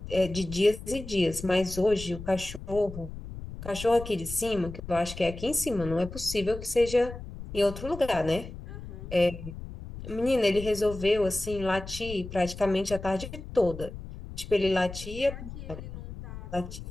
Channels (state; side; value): noise; left; rumble, 11 dB below the sound